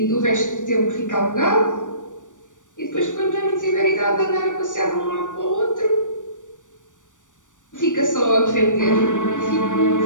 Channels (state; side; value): late; right; 0.87 ms